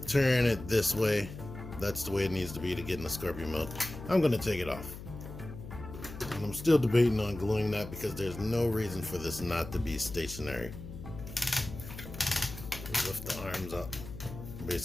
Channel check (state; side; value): noise; left; hum, 12 dB below the sound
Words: turn it this way That's the way it needs to be to get in the Scorpion mode. I'm going to take it off. And I'm still debating on gluing that because there's no reason for this not to be stationary. Lift the arms up